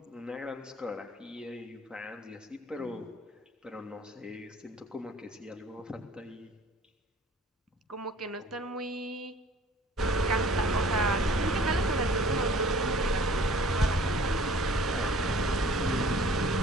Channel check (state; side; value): normal; both; correlation 0.51